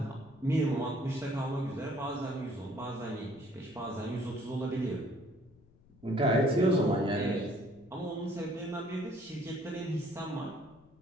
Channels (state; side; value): noise; left; rumble, 27 dB below the sound